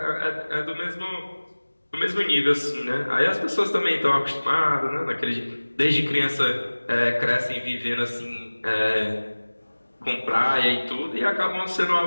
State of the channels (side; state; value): both; inverted; correlation -1.00